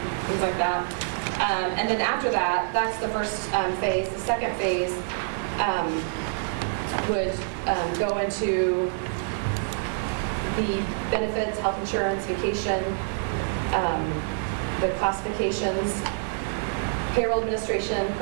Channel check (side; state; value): left; silent; digital silence